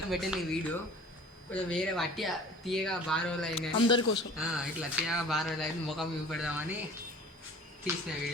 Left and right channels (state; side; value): normal; both; correlation 0.45